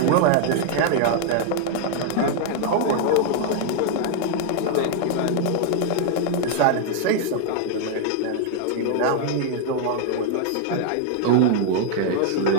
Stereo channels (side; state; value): both; different; correlation 0.00